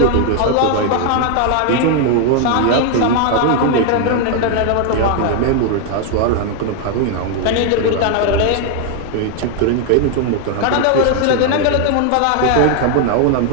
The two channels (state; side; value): different; both; correlation 0.00